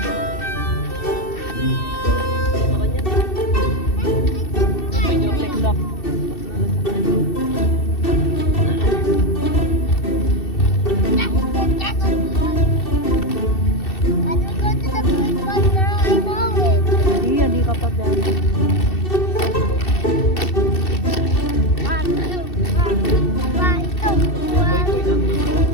Lock. Can we go to the big one now? I know it. Hindi ka pa dyan. One, two, one, two, one.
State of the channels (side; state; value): right; late; 2.7 ms